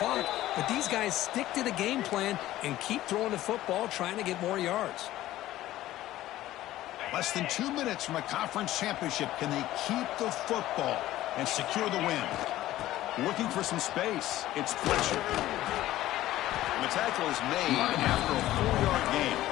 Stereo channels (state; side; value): quieter; right; 14.9 dB